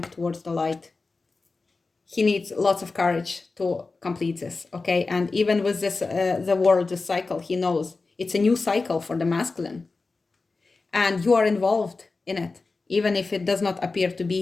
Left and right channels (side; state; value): right; quieter; 3.9 dB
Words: towards the light. He needs lots of courage to complete this, okay? And even with this, the world, the cycle, he knows it's a new cycle for the masculine. And you are involved in it, even if it does not appear to